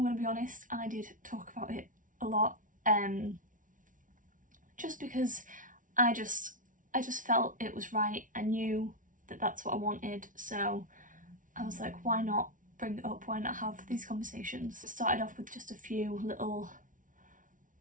going to be honest, I did talk about it a lot, just because I just felt it was right. I knew that that's what I wanted, so I was like, why not bring it up, why not have these conversations? It started off with just a few little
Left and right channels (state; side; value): late; left; 0.38 ms